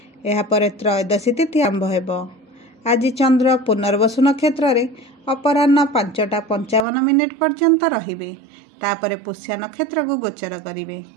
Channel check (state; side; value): drops out; left; at 6.9 s